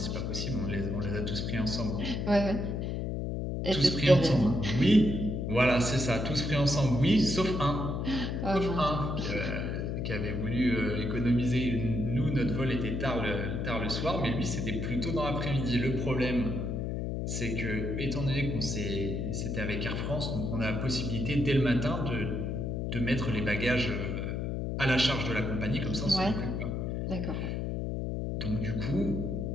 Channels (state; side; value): noise; left; hum, 2 dB below the sound